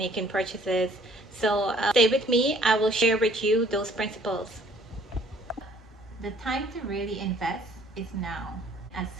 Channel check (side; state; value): both; normal; correlation 0.58